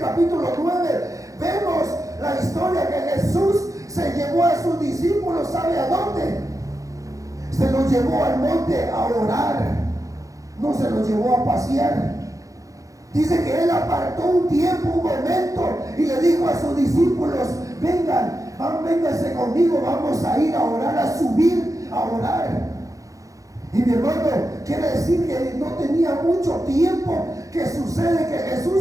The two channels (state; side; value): late; left; 0.16 ms